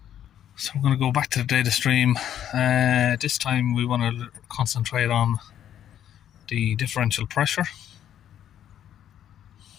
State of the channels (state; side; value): quieter; right; 10.5 dB